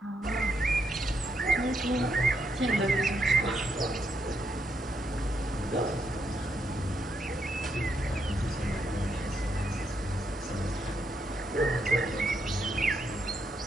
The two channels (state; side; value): normal; both; correlation 0.79